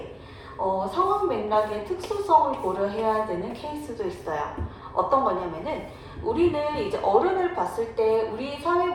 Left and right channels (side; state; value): both; identical; correlation 1.00